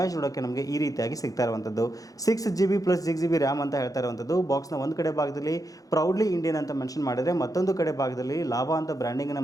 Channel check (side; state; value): right; late; 0.17 ms